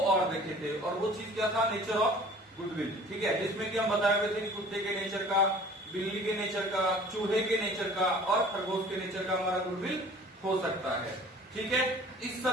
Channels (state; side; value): normal; both; correlation 0.48